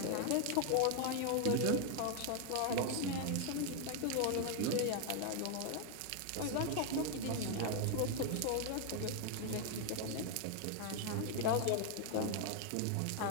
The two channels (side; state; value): both; different; correlation 0.00